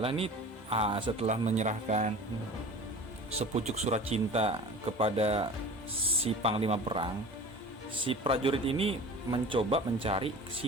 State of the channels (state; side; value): normal; both; correlation 0.38